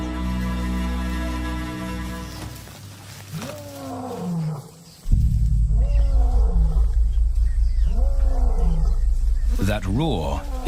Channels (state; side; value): identical; both; correlation 1.00